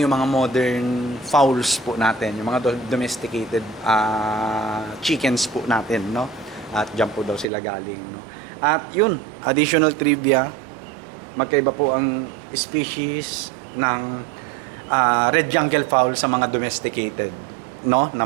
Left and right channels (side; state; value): left; drops out; at 7.5 s